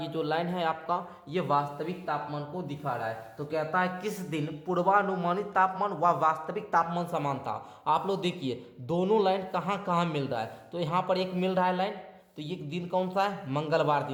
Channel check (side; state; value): both; identical; correlation 1.00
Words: जो लाइन है आपका, ये वास्तविक तापमान को दिखा रहा है। तो कहता है किस दिन पूर्वानुमानित तापमान व वास्तविक तापमान समान था। आप लोग देखिए दोनों लाइन कहाँ कहाँ मिल रहा है, तो यहाँ पर एक मिल रहा है लाइन, तो ये दिन कौन सा है? मंगलवार